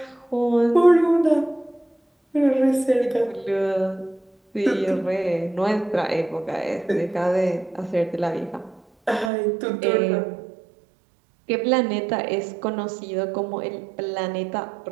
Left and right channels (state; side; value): drops out; left; at 9.3 s